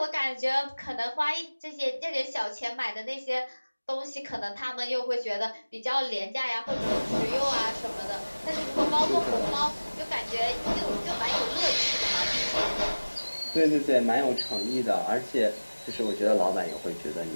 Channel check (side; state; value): both; inverted; correlation -1.00